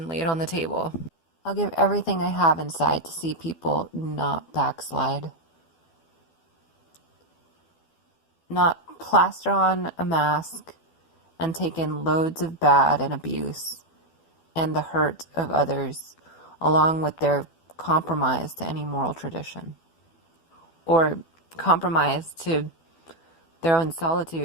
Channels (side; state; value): right; late; 12 ms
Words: lay it on the table. I'll give everything I have inside to see people not backslide. Not plaster on a mask and take in loads of bad and abuse and the hurt of others, along with their compromise to any moral tradition. Or compromise to their own